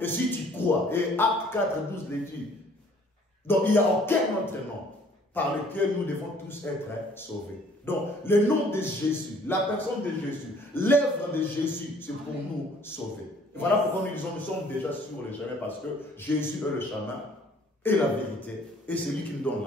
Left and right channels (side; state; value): both; normal; correlation 0.57